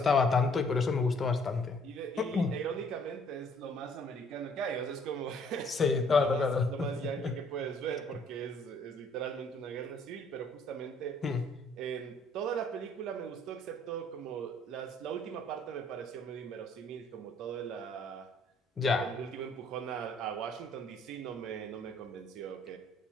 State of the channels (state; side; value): normal; both; correlation 0.61